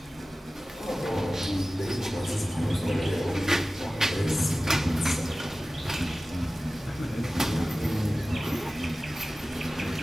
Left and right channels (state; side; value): normal; both; correlation 0.96